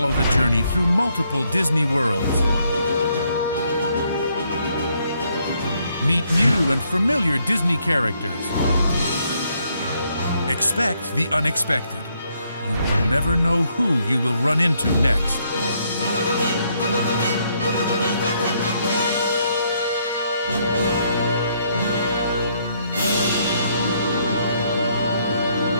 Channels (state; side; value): inverted; both; correlation -0.72